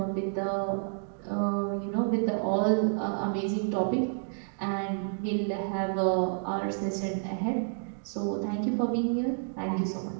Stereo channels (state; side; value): silent; left; digital silence